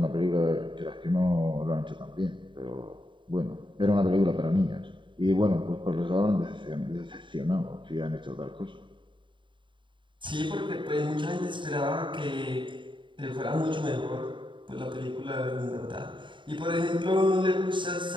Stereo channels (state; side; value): late; left; 0.23 ms